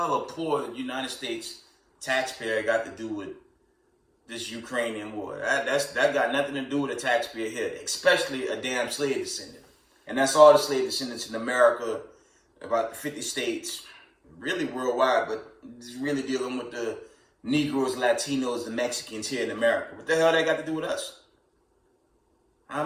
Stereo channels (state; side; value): identical; both; correlation 1.00